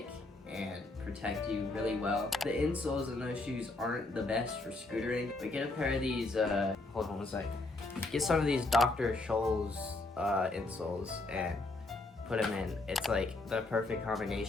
and protect you really well. The insoles in those shoes aren't the best for scootering, but get a pair of these, hold on one sec. Get some of these Dr. Scholl's insoles and put them in. It's like the perfect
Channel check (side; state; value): right; quieter; 3.1 dB